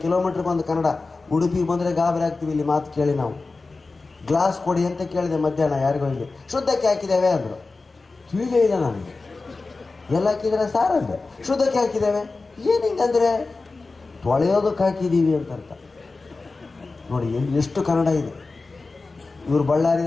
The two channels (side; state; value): right; quieter; 3.7 dB